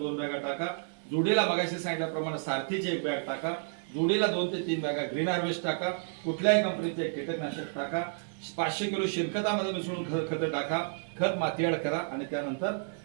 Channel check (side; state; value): left; silent; digital silence